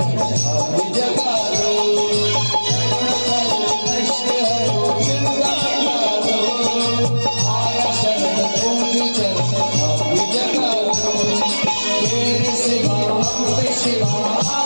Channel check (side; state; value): both; inverted; correlation -1.00